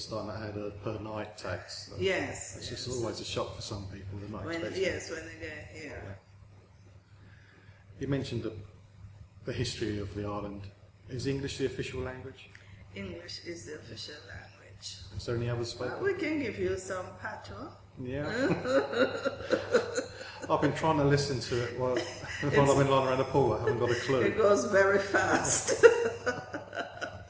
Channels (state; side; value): identical; both; correlation 1.00